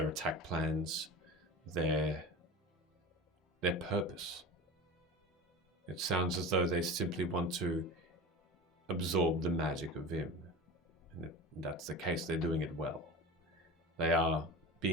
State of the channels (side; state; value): both; normal; correlation 0.32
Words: attack plans, their purpose. It sounds as though they simply want to absorb the magic of Vim. And if that's the case, they're doing it well. They are